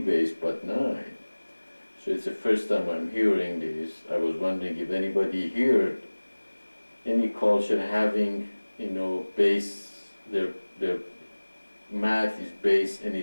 but 9. So it's the first time I'm hearing this. I was wondering if anybody heard any culture having, base, their math is base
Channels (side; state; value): both; inverted; correlation -1.00